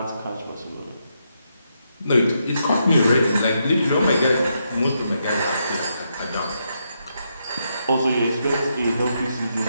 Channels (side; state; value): both; inverted; correlation -0.81